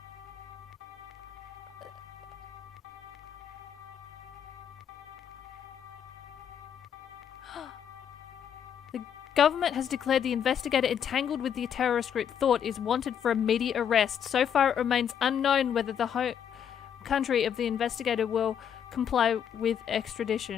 The government has declared the investigator entangled with the terrorist group Thought is wanted for immediate arrest. So far it remains unknown whether the home country of the investigator will comply with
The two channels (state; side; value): quieter; right; 8.5 dB